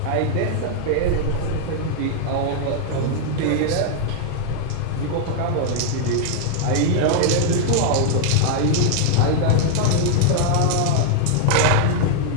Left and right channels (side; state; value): both; different; correlation 0.00